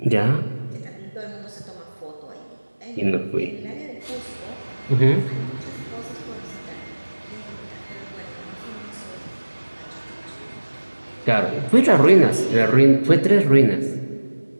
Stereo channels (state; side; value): inverted; both; correlation -1.00